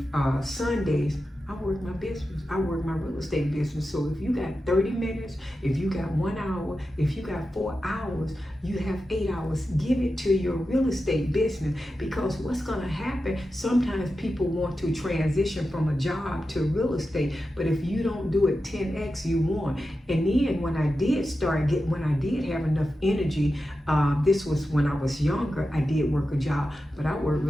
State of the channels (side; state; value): both; normal; correlation 0.91